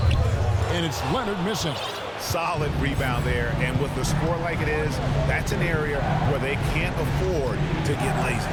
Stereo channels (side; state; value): both; identical; correlation 1.00